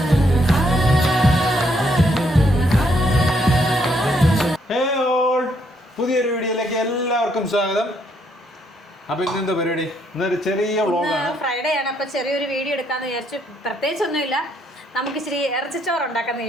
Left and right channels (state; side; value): normal; both; correlation 0.72